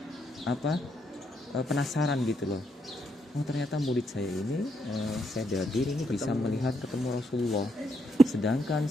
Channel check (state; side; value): normal; both; correlation 0.77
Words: penasaran gitu loh. Oh, ternyata murid saya ini Syekh Dardir ini bisa melihat ketemu Rasulullah. Sedangkan